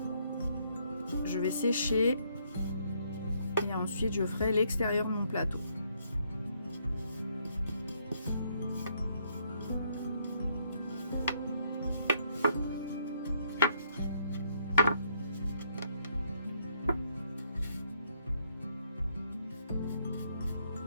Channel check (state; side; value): inverted; both; correlation -0.71